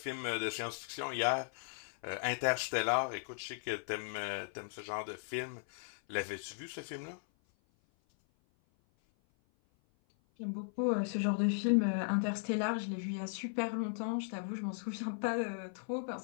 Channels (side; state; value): right; silent; 53 dB below the other